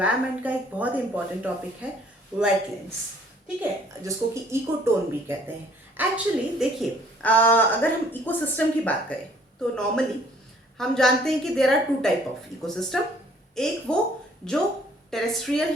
का एक बहुत इंपॉर्टेंट टॉपिक है वेटलैंड्स। ठीक है, जिसको कि इकोटोन भी कहते हैं। एक्चुअली देखिए, अगर हम इकोसिस्टम की बात करें तो नॉर्मली हम जानते हैं कि there are two type of ecosystem. एक वो जो टेरेस्ट्रियल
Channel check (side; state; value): both; normal; correlation 0.59